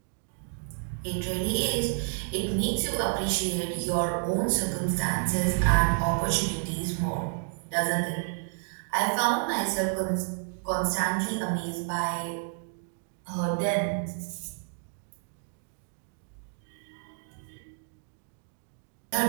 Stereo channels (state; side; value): silent; left; 58 dB below the other